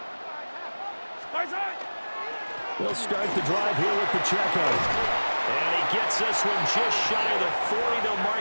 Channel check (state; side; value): inverted; both; correlation -1.00